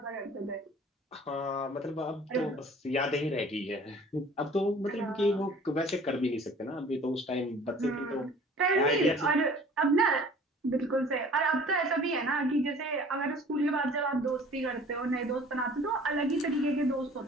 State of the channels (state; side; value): normal; both; correlation 0.49